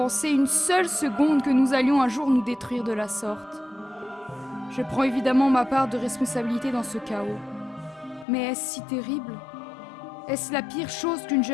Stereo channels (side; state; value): right; drops out; at 8.2 s